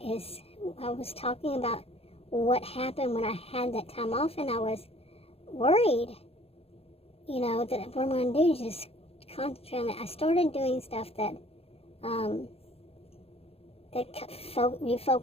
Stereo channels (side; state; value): right; late; 0.29 ms